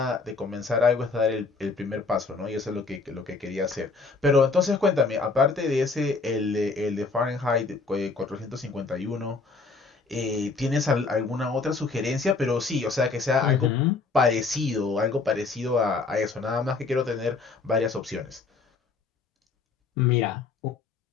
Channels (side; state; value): right; quieter; 4.2 dB